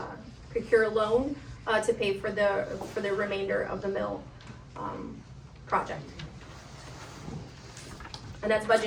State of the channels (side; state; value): both; identical; correlation 1.00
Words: procure a loan, to pay for the remainder of the mill, project. And that's